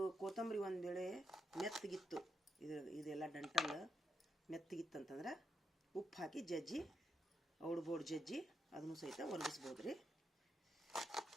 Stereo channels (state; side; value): normal; both; correlation 0.82